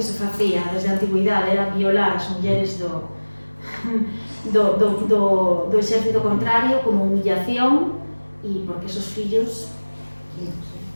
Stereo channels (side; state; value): both; inverted; correlation -1.00